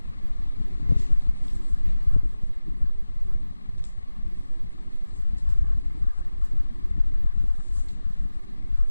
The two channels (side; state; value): both; inverted; correlation -0.96